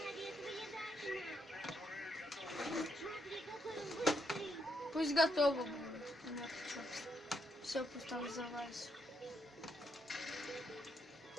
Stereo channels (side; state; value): both; normal; correlation 0.77